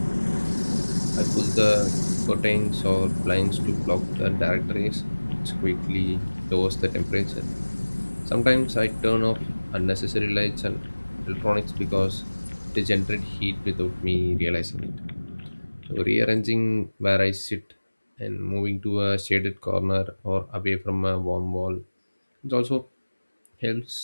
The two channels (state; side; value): inverted; both; correlation -1.00